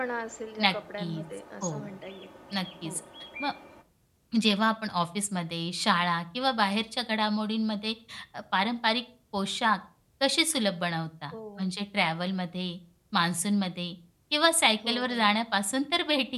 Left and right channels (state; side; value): identical; both; correlation 1.00